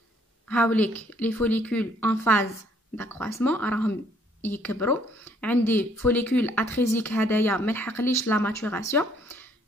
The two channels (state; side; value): normal; both; correlation 0.64